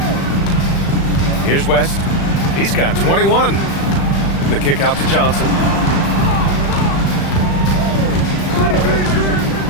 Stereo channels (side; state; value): right; late; 36 ms